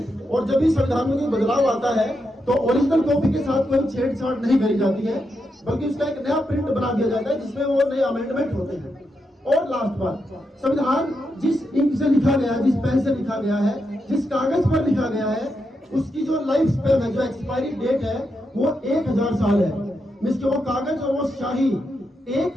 और जब भी संविधान में कोई बदलाव आता है तो ओरिजिनल कॉपी के साथ कोई छेड़छाड़ नहीं करी जाती है, बल्कि उसका एक नया प्रिंट बना दिया जाता है जिसमें वो नए अमेंडमेंट होते हैं। और लास्ट बात, संविधान जिस इंक से लिखा गया है, जिस पेन से लिखा गया है, जिस कागज पर लिखा गया है, उसकी जो लाइफ स्पेन है, जो एक्सपायरी डेट है, वो 1000 साल है। मींस कि वो कागज और वो शाही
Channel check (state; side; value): normal; both; correlation 0.84